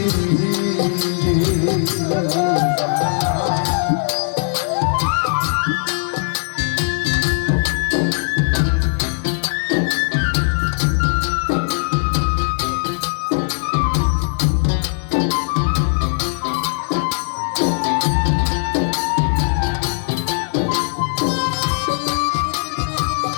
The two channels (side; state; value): right; silent; 66 dB below the other